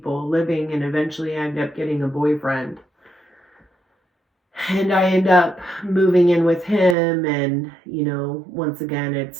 living, and eventually I end up getting a boyfriend. And I end up moving in with him, and once again,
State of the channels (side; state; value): left; drops out; at 7.0 s